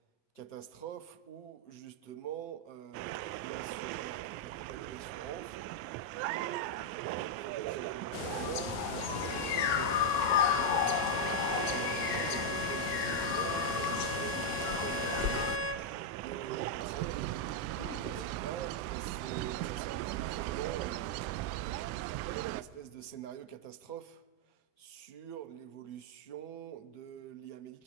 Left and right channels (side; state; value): right; late; 6.6 ms